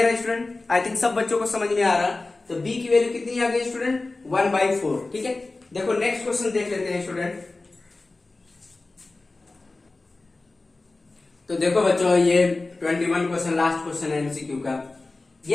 है स्टूडेंट? आई थिंक सब बच्चों को समझ में आ रहा। तो b की वैल्यू कितनी आ गई स्टूडेंट, 1/4। ठीक है, देखो नेक्स्ट क्वेश्चन देख लेते हैं स्टूडेंट। तो देखो बच्चों, ये 21 क्वेश्चन, लास्ट क्वेश्चन है एमसीक्यू का।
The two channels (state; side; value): quieter; right; 3.3 dB